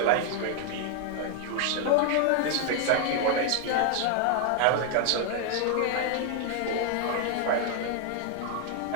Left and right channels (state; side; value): different; both; correlation 0.00